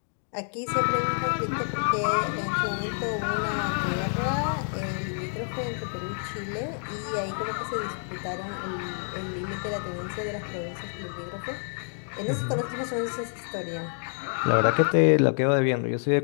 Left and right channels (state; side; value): silent; right; 59 dB below the other